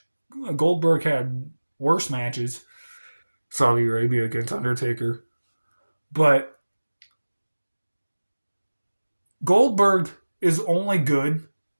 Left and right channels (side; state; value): both; inverted; correlation -1.00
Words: Goldberg had worse matches. Saudi Arabia against Undertaker. But Goldberg is only good